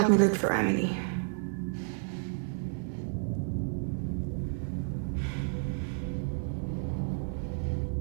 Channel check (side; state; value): left; silent; digital silence